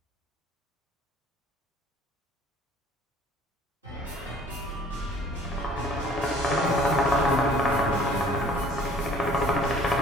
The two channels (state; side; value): normal; both; correlation 0.53